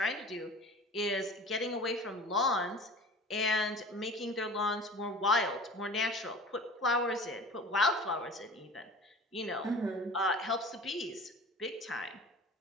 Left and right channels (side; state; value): both; normal; correlation 0.40